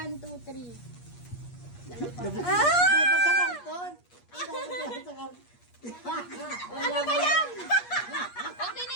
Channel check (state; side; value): late; right; 8.4 ms